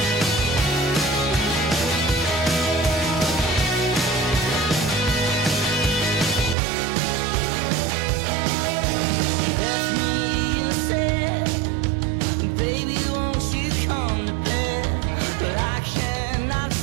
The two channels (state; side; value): drops out; left; at 6.6 s